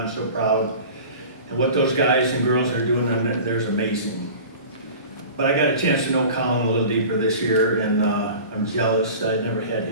so proud. And what those guys and girls are doing there's amazing. But I got a chance to know Colin a little deeper this year, and I'm jealous I never had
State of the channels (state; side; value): inverted; both; correlation -0.39